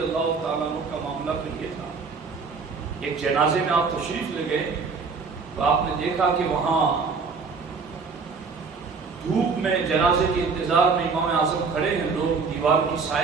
اللہ تعالیٰ عنہ کا معاملہ تو یہ تھا، ایک جنازے میں آپ تشریف لے گئے تو آپ نے دیکھا کہ وہاں دھوپ میں جنازے کے انتظار میں امام اعظم کھڑے ہیں، لوگ دیوار کی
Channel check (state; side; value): quieter; left; 4.9 dB